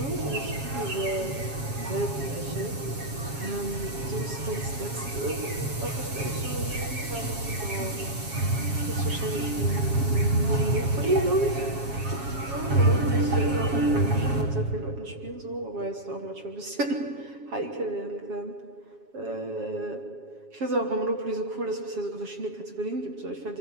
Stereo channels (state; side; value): late; left; 7.3 ms